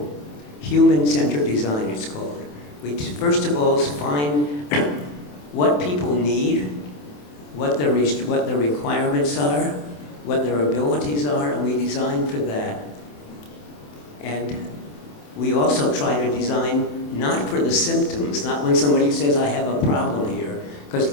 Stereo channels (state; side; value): late; right; 27 ms